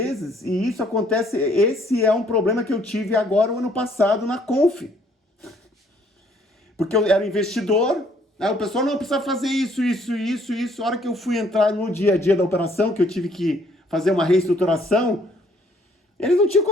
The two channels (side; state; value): both; normal; correlation 0.64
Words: e isso acontece. Esse é um problema que eu tive agora, o ano passado, na Conf. Porque eu era investidor, aí o pessoal não precisa fazer isso. A hora que eu fui entrar no dia a dia da operação, que eu tive que fazer uma reestruturação, Eles não tinham